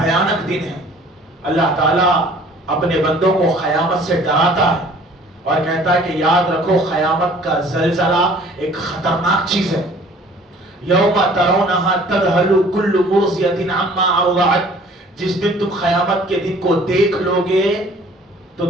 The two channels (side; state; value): both; normal; correlation 0.52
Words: دن ہے۔ اللہ تعالیٰ اپنے بندوں کو قیامت سے ڈراتا ہے اور کہتا ہے کہ یاد رکھو قیامت کا زلزلہ ایک خطرناک چیز ہے۔ یوم ترونہا تذہل کل مرضیۃ عما ارضعت، جس دن تم قیامت کے دن کو دیکھ لو گے تو